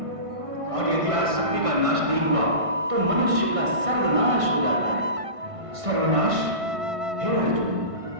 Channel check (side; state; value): left; late; 1.6 ms